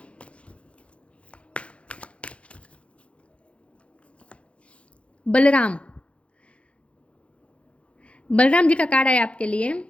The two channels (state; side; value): late; right; 0.061 ms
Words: बलराम, बलराम जी का कार्ड है आपके लिए।